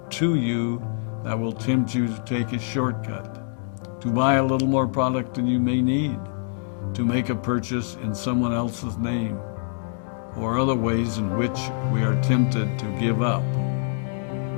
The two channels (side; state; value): right; silent; digital silence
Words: to you that will tempt you to take a shortcut, to buy a little more product than you may need, to make a purchase in someone else's name, or other ways in which we are tempted to give up